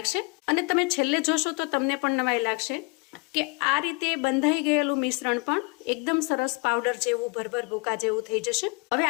અને તમે છેલ્લે જોશો તો તમને પણ નવાઈ લાગશે કે આ રીતે બંધાઈ ગયેલું મિશ્રણ પણ એકદમ સરસ પાવડર જેવું, ભરભર ભૂકા જેવું થઈ જશે. હવે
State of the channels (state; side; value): quieter; right; 30.5 dB